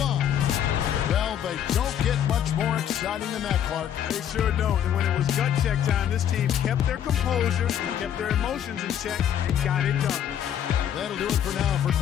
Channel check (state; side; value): quieter; right; 9.8 dB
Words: on. Well, they don't get much more exciting than that, Clark. They sure don't. And when it was gut check time, this team kept their composure, kept their emotions in check, and got it done. That'll do it for now. For